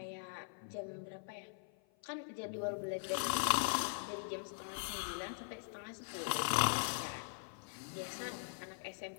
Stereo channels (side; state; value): right; silent; 50 dB below the other